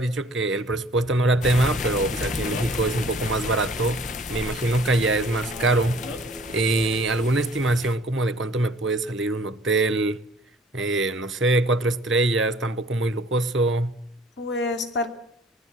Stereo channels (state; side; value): normal; both; correlation 0.54